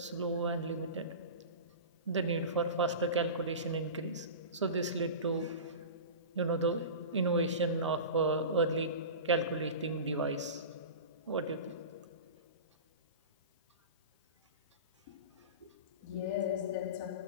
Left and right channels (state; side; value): inverted; both; correlation -0.30